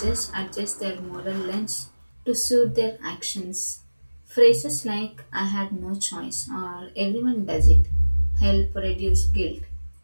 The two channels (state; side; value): inverted; both; correlation -1.00